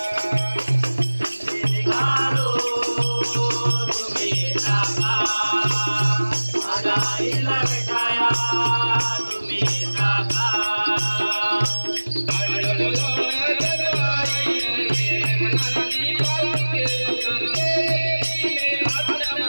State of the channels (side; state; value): both; inverted; correlation -1.00